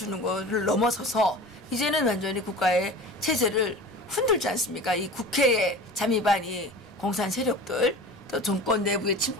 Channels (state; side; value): noise; left; rumble, 29 dB below the sound